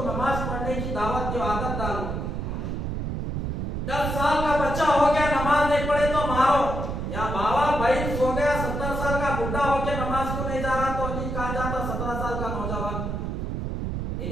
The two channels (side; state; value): right; noise; rumble, 3 dB below the sound